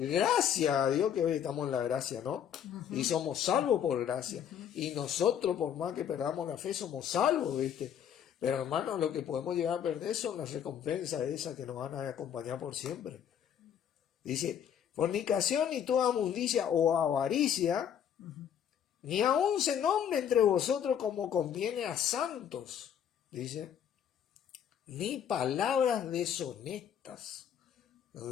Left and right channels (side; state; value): right; quieter; 8.9 dB